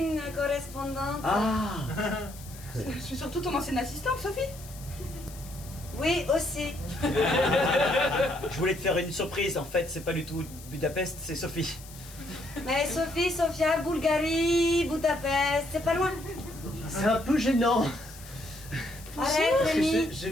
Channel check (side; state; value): left; noise; hiss, 18 dB below the sound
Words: correspondante. Ah. Je suis surtout ton ancienne assistante, Sophie. Oui, aussi. Je voulais te faire une surprise, en fait, c'est pas du tout Budapest, c'est Sophie. Mais Sophie, Sofia, Bulgarie, Budapest, c'est pas loin. C'est un peu gênant. Arrête, Parce que Rémi. je